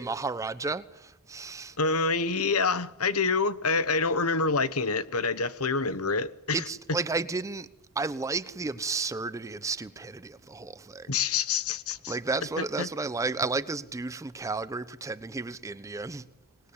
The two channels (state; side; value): normal; both; correlation -0.01